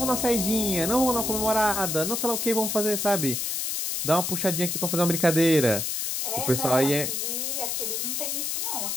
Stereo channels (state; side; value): noise; left; hiss, 1 dB below the sound